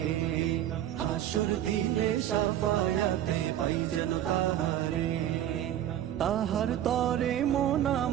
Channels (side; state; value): left; quieter; 11.6 dB